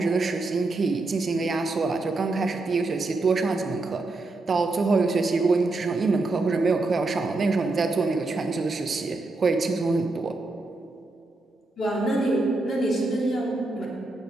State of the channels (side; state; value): left; quieter; 3.2 dB